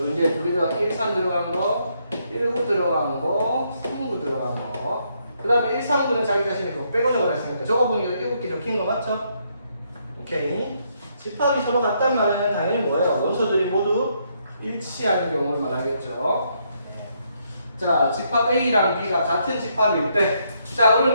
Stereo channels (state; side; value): inverted; both; correlation -0.74